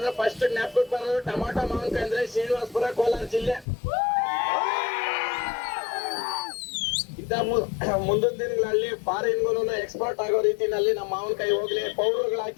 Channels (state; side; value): drops out; right; at 3.7 s